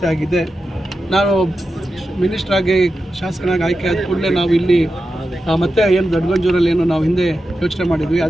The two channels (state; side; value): normal; both; correlation 0.91